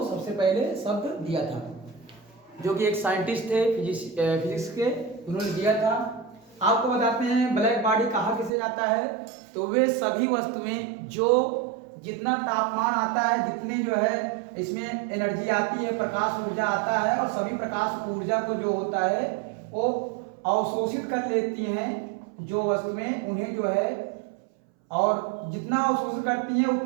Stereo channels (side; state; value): left; drops out; at 8.5 s